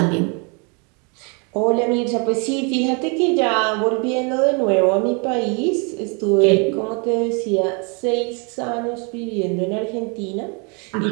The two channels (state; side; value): quieter; left; 34.1 dB